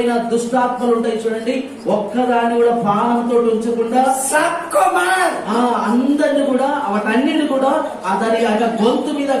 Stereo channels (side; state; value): both; identical; correlation 1.00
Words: దుష్టాత్మలు ఉంటాయి చూడండి, ఒక్కదాన్ని కూడా ప్రాణంతో ఉంచకుండా सबको मार। ఆ అందరిని కూడా వాటన్నిటిని కూడా దాని యొక్క గొంతు మీద